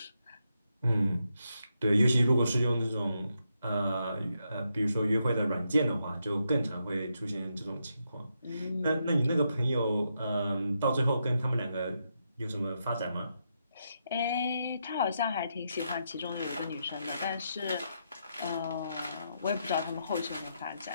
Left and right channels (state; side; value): inverted; both; correlation -0.82